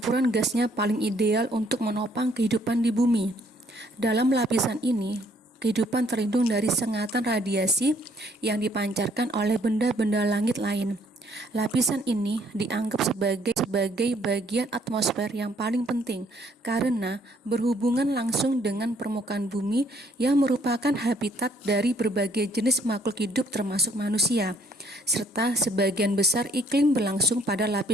gasnya paling ideal untuk menopang kehidupan di bumi. Dalam lapisan ini, kehidupan terlindung dari sengatan radiasi yang dipancarkan oleh benda-benda langit lain. Lapisan ini dianggap sebagai bagian atmosfer yang paling penting karena berhubungan langsung dengan permukaan bumi yang merupakan habitat dari berbagai jenis makhluk hidup termasuk manusia, serta sebagian besar iklim berlangsung pada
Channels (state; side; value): normal; both; correlation 0.65